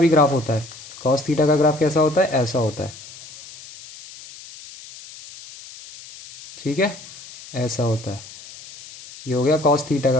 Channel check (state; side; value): noise; left; hiss, 17 dB below the sound